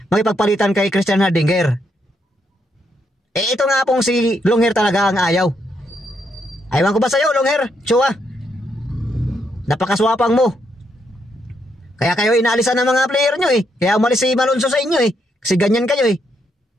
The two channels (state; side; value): normal; both; correlation 0.77